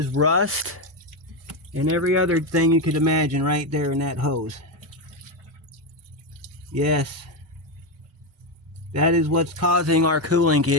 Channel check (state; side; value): normal; both; correlation 0.10